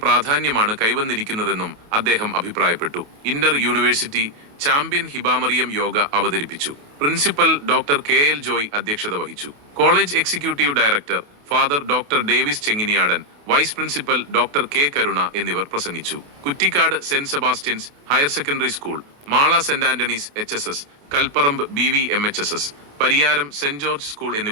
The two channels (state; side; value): late; left; 28 ms